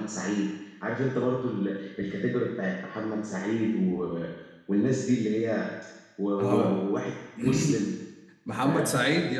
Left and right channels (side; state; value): both; identical; correlation 1.00